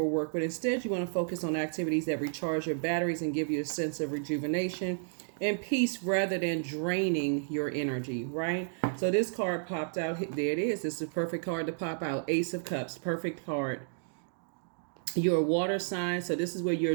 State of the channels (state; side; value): silent; left; digital silence